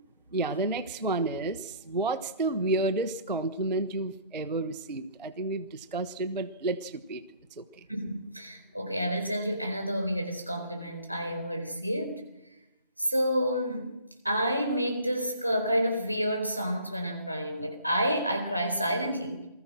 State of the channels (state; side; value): inverted; both; correlation -0.54